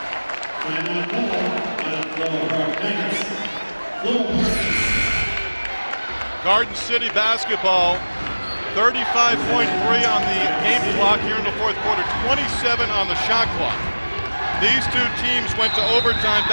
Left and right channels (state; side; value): inverted; both; correlation -1.00